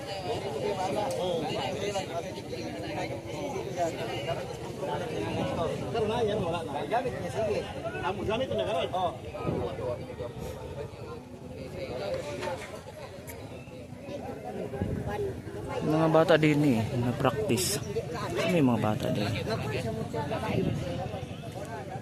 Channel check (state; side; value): identical; both; correlation 1.00